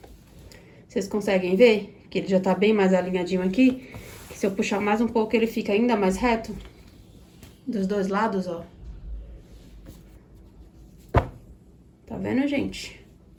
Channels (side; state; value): both; identical; correlation 1.00